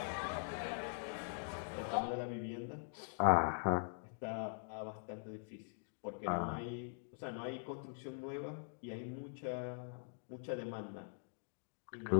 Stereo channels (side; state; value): right; silent; digital silence